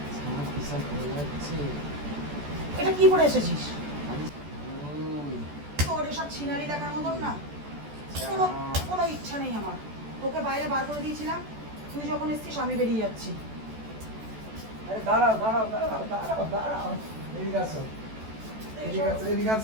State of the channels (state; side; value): late; left; 14 ms